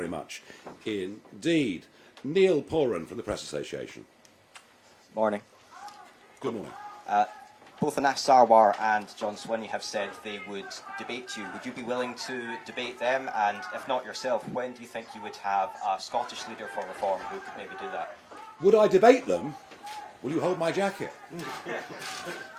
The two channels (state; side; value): identical; both; correlation 1.00